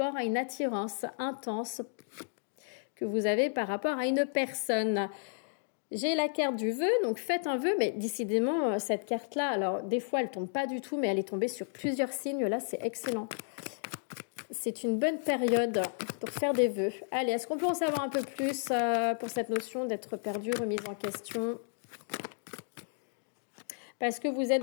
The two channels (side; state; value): right; silent; digital silence